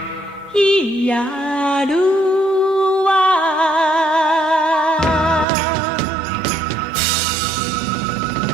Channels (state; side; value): drops out; left; at 5.5 s